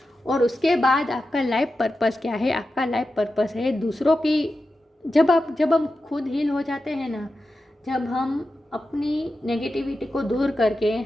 और उसके बाद आपका लाइफ पर्पस क्या है। आपका लाइफ पर्पस है दूसरों की, जब हम खुद हील हो जाते हैं ना, जब हम अपनी नेगेटिविटी को दूर करके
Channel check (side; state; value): both; normal; correlation 0.91